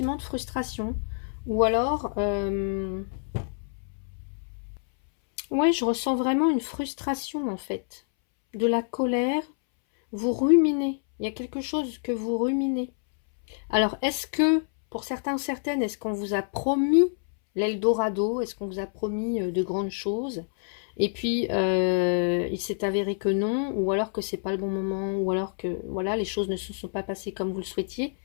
de frustration. Ou alors, ouais, je ressens vraiment une frustration, en fait. De la colère, vous ruminez. Il y a quelque chose que vous ruminez. Alors, est-ce que Pour certains, certaines, est-ce qu'on vous a promis l'Eldorado? Est-ce qu'on vous a promis de grandes choses? Et puis, il s'est avéré que non, ou alors que c'est pas le bon moment, ou alors que voilà, les choses ne se sont pas passées comme vous le souhaitiez.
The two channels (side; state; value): right; silent; 60 dB below the other